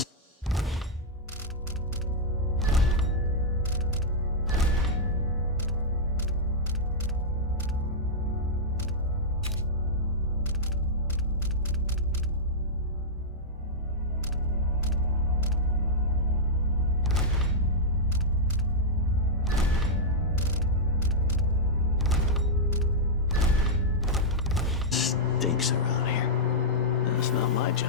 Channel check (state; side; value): normal; both; correlation -0.07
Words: stinks around here. It's not my